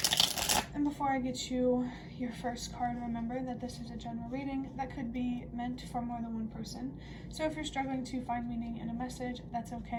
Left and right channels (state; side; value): identical; both; correlation 1.00